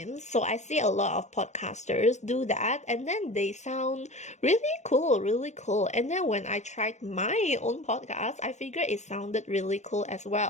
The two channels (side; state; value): right; late; 0.34 ms